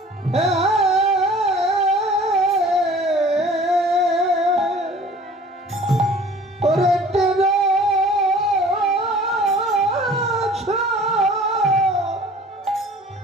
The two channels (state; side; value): normal; both; correlation 0.48